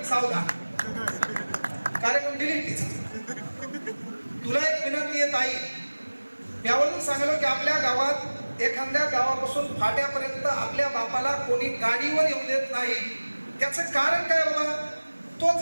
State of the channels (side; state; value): both; inverted; correlation -1.00